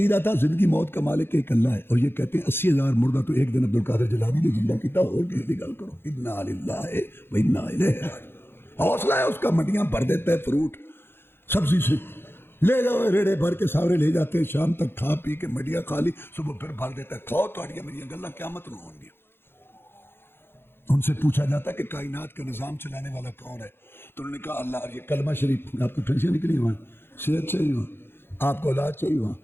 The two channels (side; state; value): right; late; 0.11 ms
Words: تھا زندگی موت کا مالک ایک اللہ ہے، اور یہ کہتے ہیں 80,000 مردہ تو ایک دن عبدالقادر جیلانی نے زندہ کیتا، اور کسی کی گل کرو، انا للہ و انا الیہ راجعون۔ حوصلہ ہے اس کا، منڈیاں بھر دیتا ہے فروٹ سبزی سے، لے جاؤ ریڑے بھر کے ساورے لے جاتے ہیں، شام تک کھا پی کے مڈیاں خالی، صبح پھر بھر دیتا ہے، کھاؤ تاڑیاں میری گلاں قیامت نہ ہوں گی۔ ان سے پوچھا جاتا ہے کہ کائنات کا نظام چلانے والا کون ہے؟ تو انہوں نے کہا اللہ۔ اور یہ کلمہ شریف، آپ کو ٹینشن نکلی وہاں، صحت چاہیے وہاں، آپ کو اولاد چاہیے وہاں،